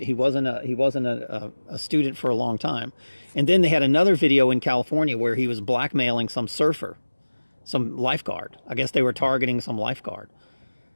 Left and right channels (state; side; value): inverted; both; correlation -1.00